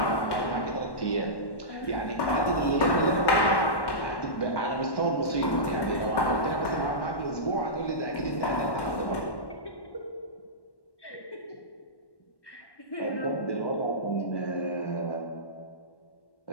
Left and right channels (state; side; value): late; right; 1.1 ms